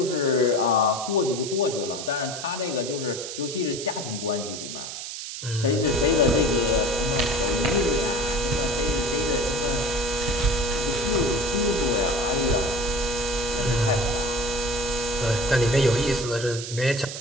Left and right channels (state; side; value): noise; right; hiss, 8 dB below the sound